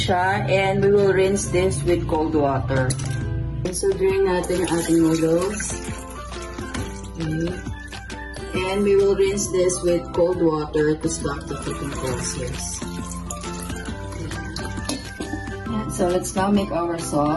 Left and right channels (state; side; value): identical; both; correlation 1.00